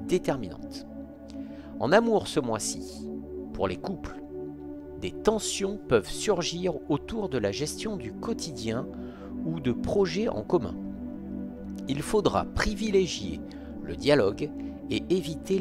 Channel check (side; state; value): both; identical; correlation 1.00